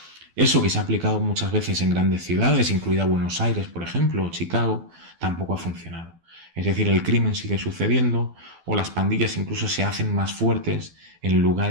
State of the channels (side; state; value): left; late; 12 ms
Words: Eso que se ha aplicado muchas veces en grandes ciudades, incluida Buenos Aires, por ejemplo, o Chicago, tampoco ha funcionado. Es decir, el crimen sigue sucediendo o las pandillas incluso se hacen más fuertes en